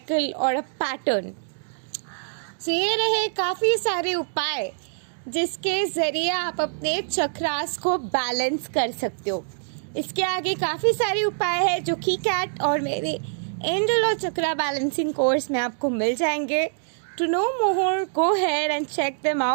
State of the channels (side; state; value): left; silent; digital silence